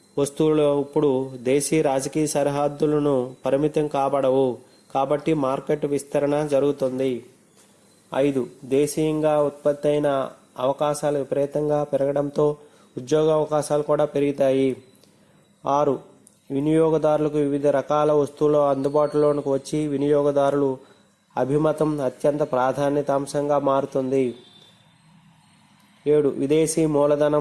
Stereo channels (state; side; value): identical; both; correlation 1.00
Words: వస్తువులు ఇప్పుడు దేశీ రాజకీయ సరిహద్దులను పరిమితం కాబడవు కాబట్టి మార్కెట్ విస్తరణ జరుగుతుంది. 5. దేశీయంగా ఉత్పత్తి అయిన అవకాశాలు విపరీతంగా పెరగడంతో ఉద్యోగ అవకాశాలు కూడా పెరుగుతాయి. 6. వినియోగదారులకు వివిధ రకాల వస్తువులు అందుబాటులోకి వచ్చి వినియోగదారులు అభిమతం అత్యంత ప్రాధాన్యత అంశంగా మారుతుంది. 7. విదేశీ